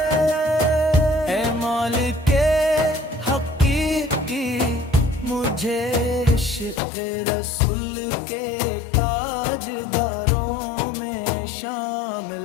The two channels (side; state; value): right; drops out; at 6.8 s